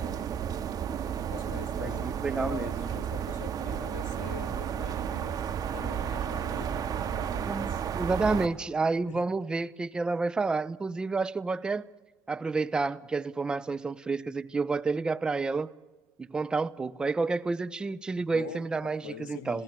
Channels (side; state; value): left; quieter; 4.3 dB